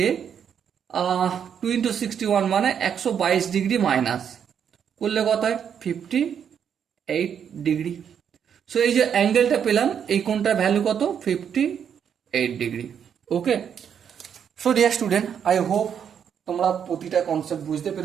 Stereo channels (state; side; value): quieter; left; 8.1 dB